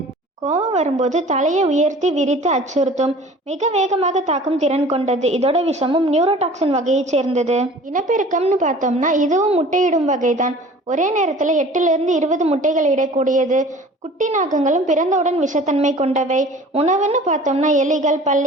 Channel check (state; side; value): normal; both; correlation 0.45